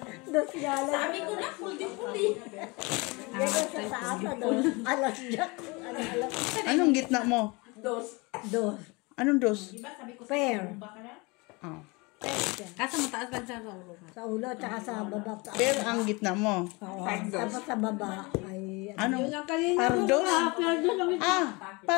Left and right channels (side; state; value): right; quieter; 26.6 dB